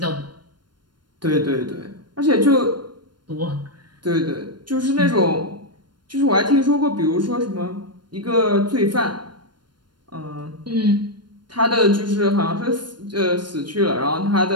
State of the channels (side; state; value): left; late; 0.71 ms